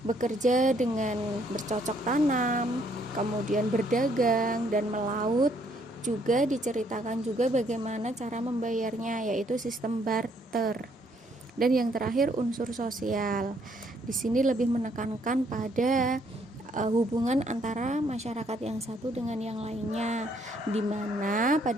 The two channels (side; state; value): both; normal; correlation 0.68